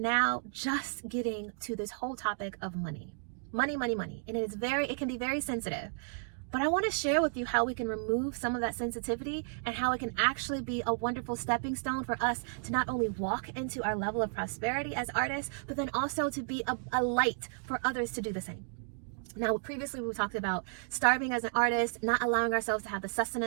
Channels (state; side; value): silent; left; digital silence